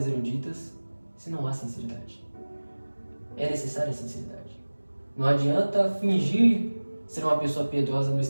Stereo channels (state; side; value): inverted; both; correlation -1.00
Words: eruditas se não há sinceridade. É necessária a sinceridade. Não adianta fingir ser uma pessoa piedosa no